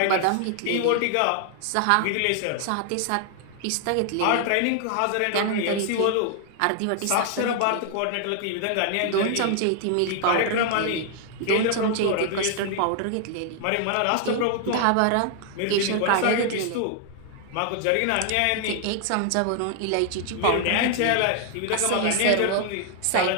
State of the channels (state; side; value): different; both; correlation 0.00